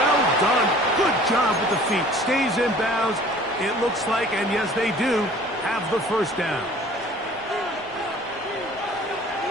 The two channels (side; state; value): both; normal; correlation 0.50